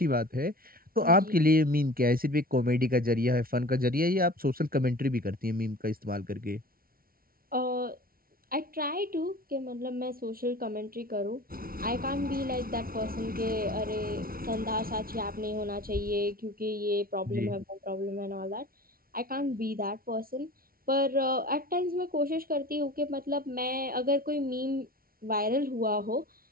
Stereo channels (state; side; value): late; left; 0.43 ms